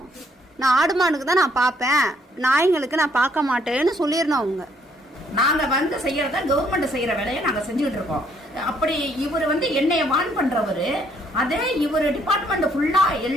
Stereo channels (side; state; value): both; normal; correlation 0.68